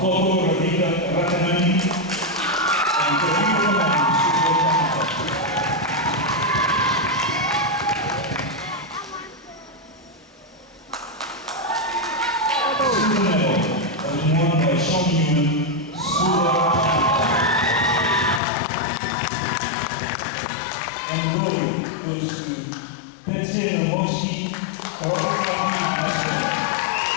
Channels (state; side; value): drops out; right; at 18.4 s